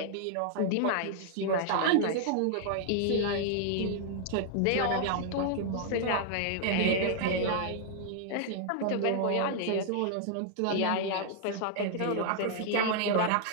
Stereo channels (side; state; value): both; different; correlation 0.00